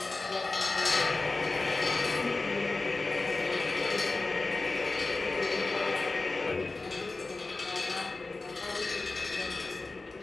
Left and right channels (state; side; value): quieter; right; 3.5 dB